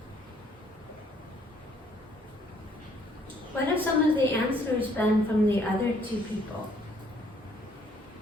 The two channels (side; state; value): both; normal; correlation 0.64